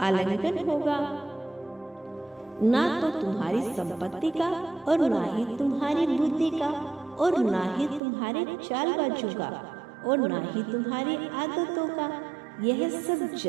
होगा, ना तो तुम्हारी संपत्ति का और ना ही तुम्हारी बुद्धि का और ना ही तुम्हारे चालबाजों का और ना ही तुम्हारी आदतों का। यह सब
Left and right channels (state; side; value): drops out; left; at 8.0 s